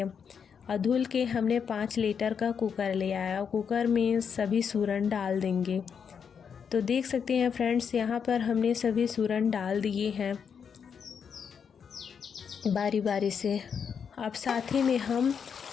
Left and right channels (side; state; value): right; quieter; 6.9 dB